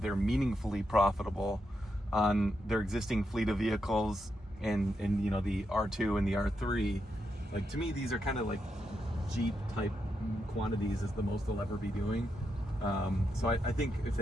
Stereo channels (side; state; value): both; normal; correlation 0.84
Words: meaningfully profitable on their existing fleet of vehicles and you know, the R2 and the R3. Like, to me, these are kind of like Jeep type quantities is the most they'll ever be doing. So I think if